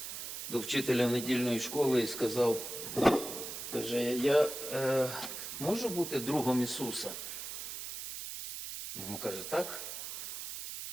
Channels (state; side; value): noise; right; hiss, 7 dB below the sound